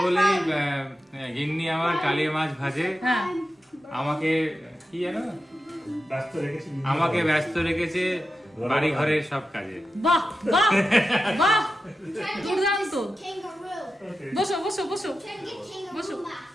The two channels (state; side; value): normal; both; correlation 0.91